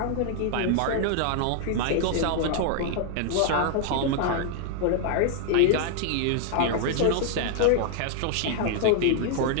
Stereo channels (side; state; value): both; different; correlation 0.00